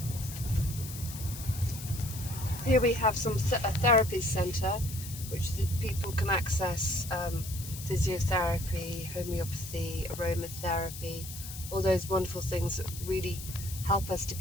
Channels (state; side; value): noise; left; hiss, 11 dB below the sound